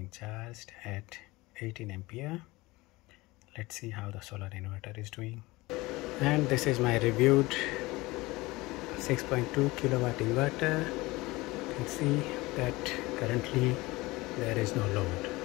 charged at 18 ampere. Let's see how the solar inverter is doing. And this is my reviewed 6.2 kilowatt inverter. You can see that currently there is no load,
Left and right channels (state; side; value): quieter; right; 21.3 dB